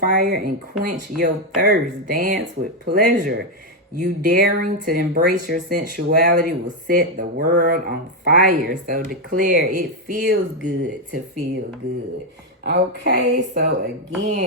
and quench your thirst. Dance with pleasure. You daring to embrace your sensuality will set the world on fire. So declare it feels good to feel good. Okay, so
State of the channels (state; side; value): normal; both; correlation 0.04